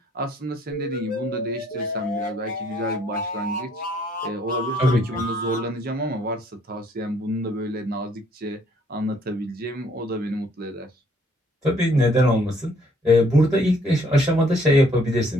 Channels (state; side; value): normal; both; correlation 0.64